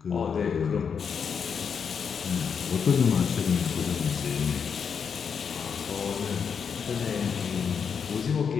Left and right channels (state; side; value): quieter; right; 6.7 dB